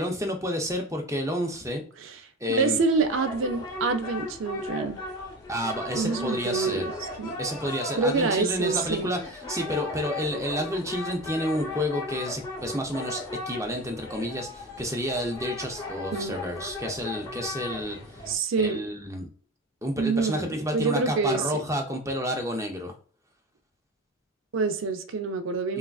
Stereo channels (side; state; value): both; normal; correlation 0.29